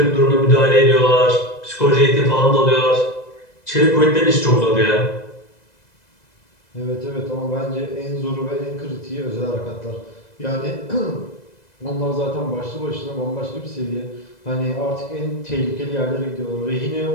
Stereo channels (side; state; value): right; late; 2.0 ms